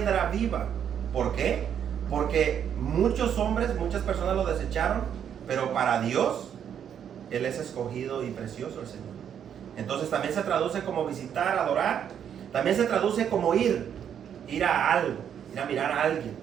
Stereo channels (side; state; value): left; quieter; 8.8 dB